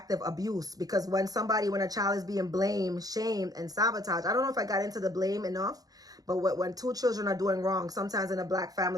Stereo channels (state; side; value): late; left; 0.18 ms